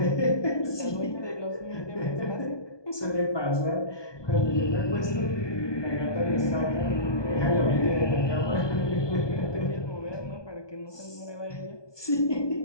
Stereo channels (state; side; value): late; right; 1.2 ms